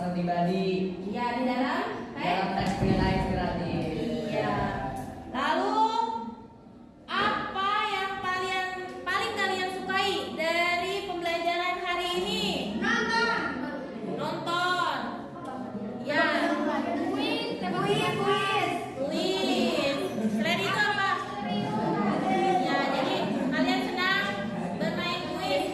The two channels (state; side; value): identical; both; correlation 1.00